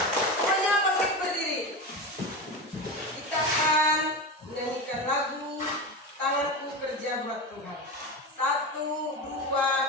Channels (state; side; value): normal; both; correlation 0.22